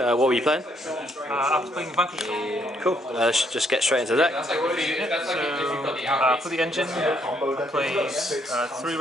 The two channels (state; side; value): normal; both; correlation 0.70